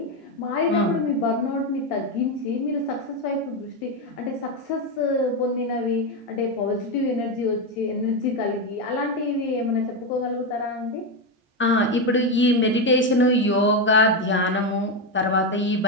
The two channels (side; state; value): both; normal; correlation 0.09